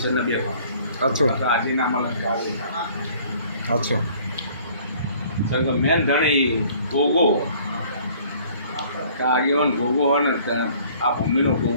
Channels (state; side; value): inverted; both; correlation -0.55